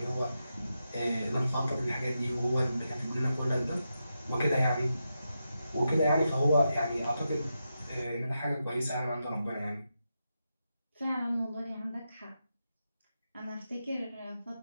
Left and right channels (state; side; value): inverted; both; correlation -0.87